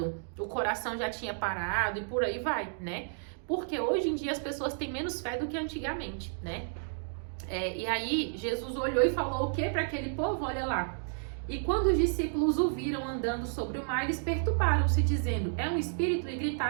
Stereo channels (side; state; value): left; silent; digital silence